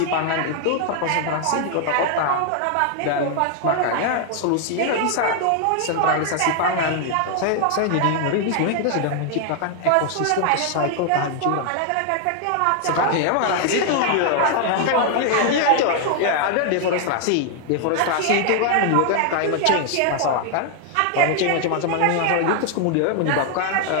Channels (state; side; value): different; both; correlation 0.00